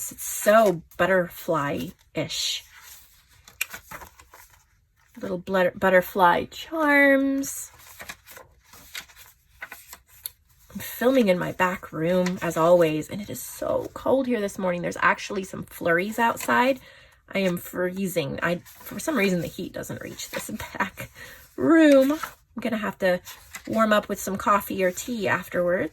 It's so butterfly-ish. Little butterfly charms. I'm filming in my back room as always, and it is so cold here this morning. There's actually some flurries outside. I am freezing. For some reason, the heat doesn't reach this back room. I'm gonna have to warm up with some coffee or tea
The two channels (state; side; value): identical; both; correlation 1.00